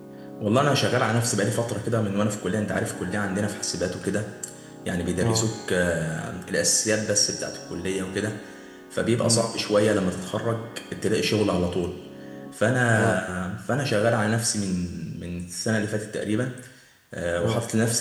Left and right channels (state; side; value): identical; both; correlation 1.00